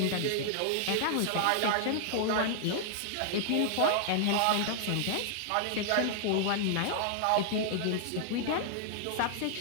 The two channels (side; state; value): both; different; correlation -0.01